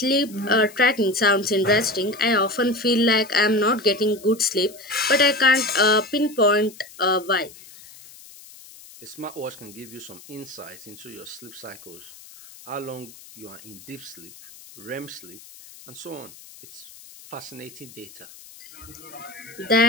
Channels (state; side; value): noise; left; hiss, 20 dB below the sound